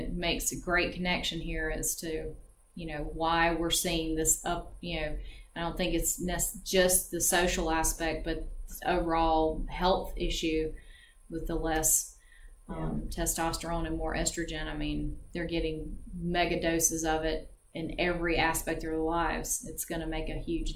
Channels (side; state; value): both; identical; correlation 1.00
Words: makes a great connection here as to, why we're seeing this up, I don't think it's just the social aspect, but the overall health issue with the less testosterone and more estrogen. I mean, they're getting mega doses of it in every aspect of their lives. It's going to make a huge